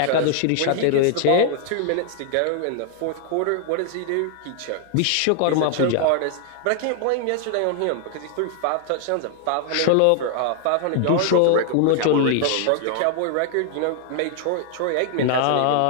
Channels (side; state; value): both; different; correlation 0.00